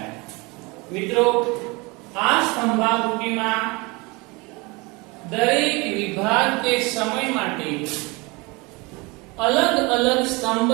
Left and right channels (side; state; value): left; quieter; 26.1 dB